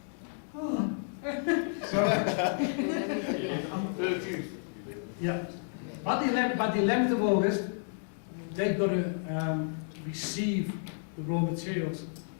Oh. So, yeah. By the 11th of August, they've got to receive the raw materials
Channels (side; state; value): right; silent; digital silence